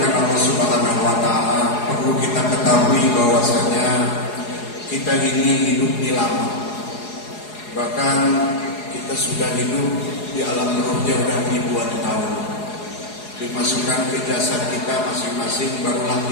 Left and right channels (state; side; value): late; right; 4.8 ms